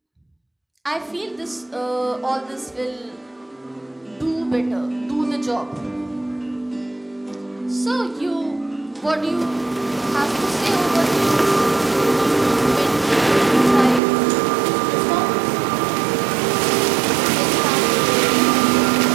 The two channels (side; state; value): left; drops out; at 14.0 s